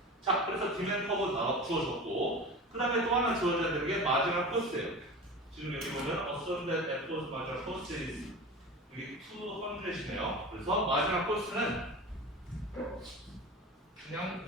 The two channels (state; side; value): normal; both; correlation 0.32